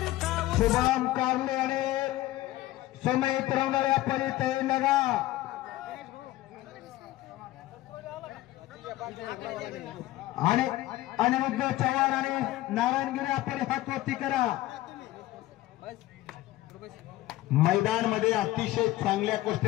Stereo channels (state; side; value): quieter; right; 16.3 dB